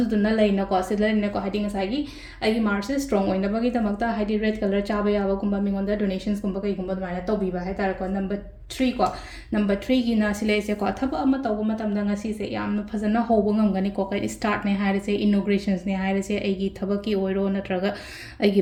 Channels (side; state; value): both; identical; correlation 1.00